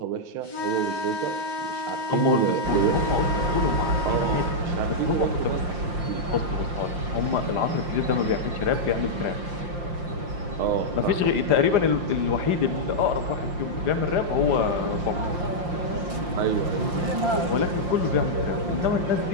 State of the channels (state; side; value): late; left; 5.7 ms